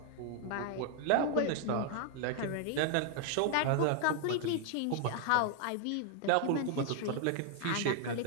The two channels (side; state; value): both; different; correlation 0.00